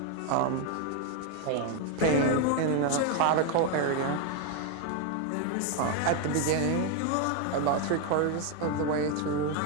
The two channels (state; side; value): different; both; correlation 0.01